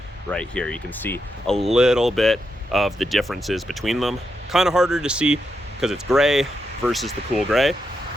right here. You can see a little bit of the differences between them. Kind of harder to see because it's gray versus the cool gray.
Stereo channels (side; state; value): both; normal; correlation 0.84